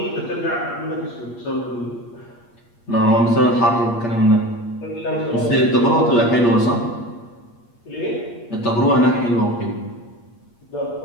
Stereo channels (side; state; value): right; late; 8.5 ms